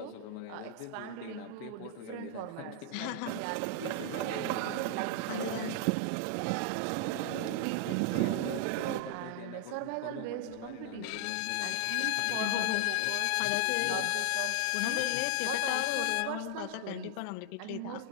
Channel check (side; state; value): both; different; correlation 0.00